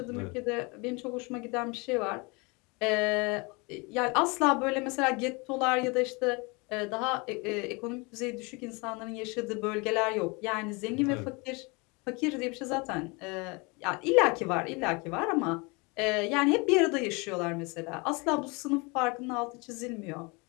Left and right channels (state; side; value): quieter; right; 28.5 dB